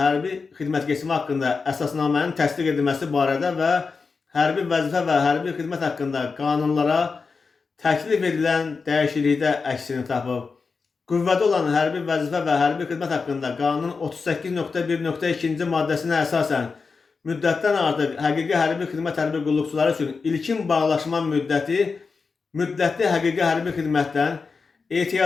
xidmət keçimi haqqında əsasnamənin təsdiq edilməsi barədə və hərbi vəzifə və hərbi xidmət haqqında qanunlara təklif edilən dəyişiklikdə əksini tapıb. Qüvvədə olan hərbi vəzifə və hərbi xidmət haqqında qanunun 38.1.2-ci maddəsinə əsasən müddətdən artıq həqiqi hərbi xidmət hərbi qulluqçuları üçün ilkin bağlaşma müddətli həqiqi hərbi xidmətdən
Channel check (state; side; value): quieter; right; 4.7 dB